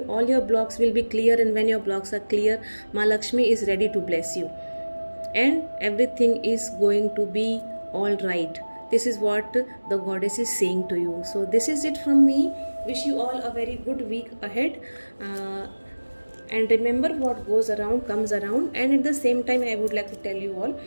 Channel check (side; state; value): both; inverted; correlation -1.00